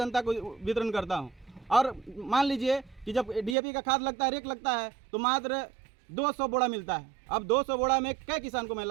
को वितरण करता हूँ। और मान लीजिए कि जब DAP का खाद लगता है, रेक लगता है, तो मात्र 200 बोरा मिलता है। अब 200 बोरा में कै किसान को मैं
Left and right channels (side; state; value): left; drops out; at 3.6 s